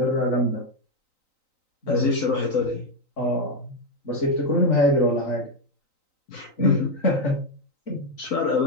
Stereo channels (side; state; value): right; late; 3.9 ms